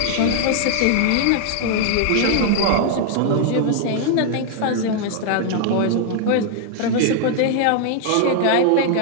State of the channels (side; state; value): both; different; correlation 0.00